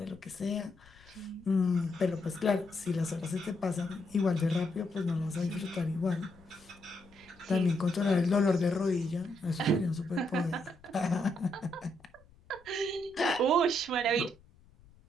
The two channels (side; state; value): left; noise; rumble, 27 dB below the sound